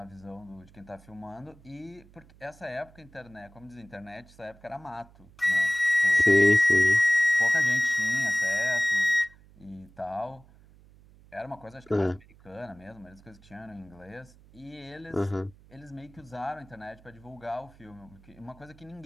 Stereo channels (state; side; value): noise; right; hum, 25 dB below the sound